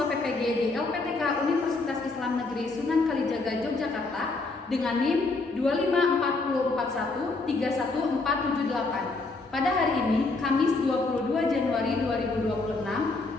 PPG di LPTK Universitas Islam Negeri Sunan Kalijaga Yogyakarta dengan NIM 254413148. Pada hari ini, Kamis 22 Januari 2026,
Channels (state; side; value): quieter; right; 3.5 dB